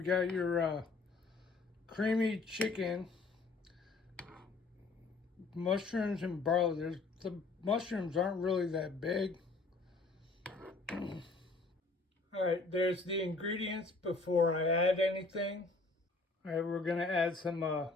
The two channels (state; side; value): quieter; right; 3.7 dB